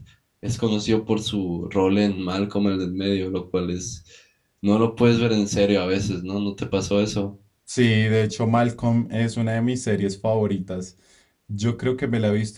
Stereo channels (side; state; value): both; identical; correlation 1.00